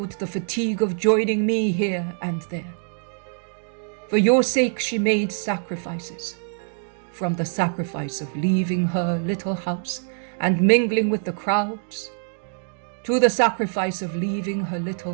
the fatigue of joining me here and there. For your sake, she made sacrifices, from the sacrifice of leaving her little house and mingling with the crowds, to the sacrifice of leaving her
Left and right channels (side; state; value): left; silent; 56 dB below the other